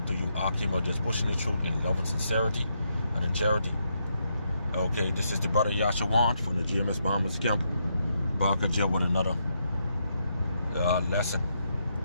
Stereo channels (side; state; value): both; inverted; correlation -0.79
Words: to you, Qam, just pushing the truth in love and sincerity and in charity. Okay, this is the brother Yasharahla from the GMS Bahamas camp. Back again with another lesson.